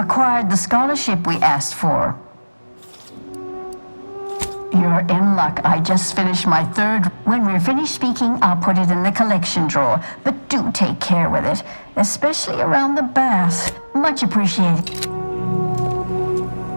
the scholarship we asked for? You're in luck. I just finished my third. When we're finished speaking, I'll put it in the collection drawer. But do take care with it, especially around the bath. Much appreciated.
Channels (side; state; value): both; inverted; correlation -1.00